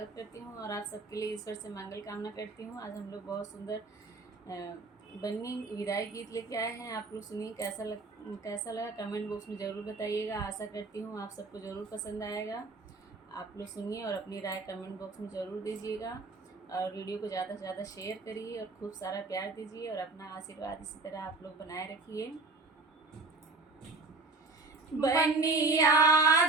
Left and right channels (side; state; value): left; quieter; 3.5 dB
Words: करती हूँ और आप सबके लिए ईश्वर से मंगल कामना करती हूँ। आज हम लोग बहुत सुंदर बन्नी विदाई गीत लेके आए हैं। आप लोग सुनिए, कैसा लगा कमेंट बॉक्स में ज़रूर बताइएगा। आशा करती हूँ आप सबको ज़रूर पसंद आएगा। आप लोग सुनिए और अपनी राय कमेंट बॉक्स में ज़रूर दीजिएगा और वीडियो को ज़्यादा से ज़्यादा शेयर करिए और खूब सारा प्यार दीजिए और अपना आशीर्वाद इसी तरह आप लोग बनाए रखिए। बन्नी